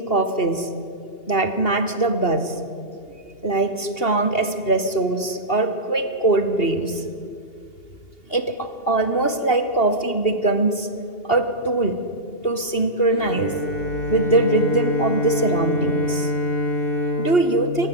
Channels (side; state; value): right; late; 2.8 ms